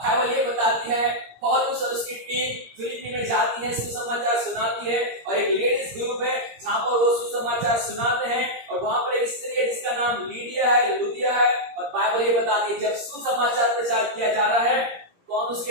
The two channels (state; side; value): late; left; 17 ms